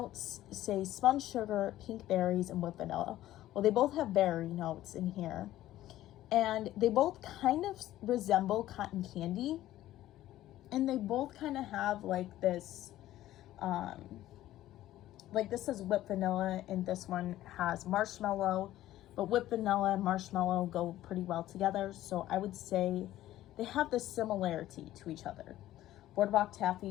say spun sugar, pink berries, and whipped vanilla. Well, they both have berry notes in here. And they both kind of resemble cotton candy. And they both kind of have like this, like this is whipped vanilla and this one has marshmallow. But whipped vanilla and marshmallow go pretty well together. So I would say they have this similarity to each other. Boardwalk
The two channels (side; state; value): right; quieter; 14.2 dB